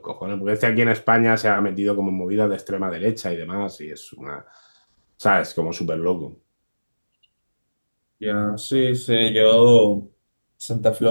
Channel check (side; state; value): both; inverted; correlation -1.00